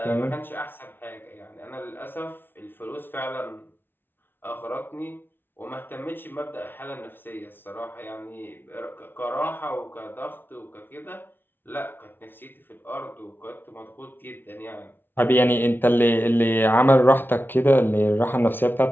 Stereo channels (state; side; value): late; right; 0.10 ms